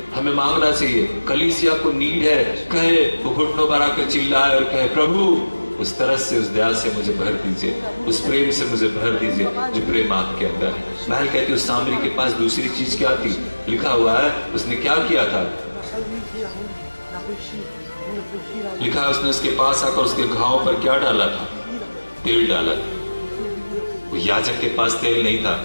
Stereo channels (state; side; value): inverted; both; correlation -1.00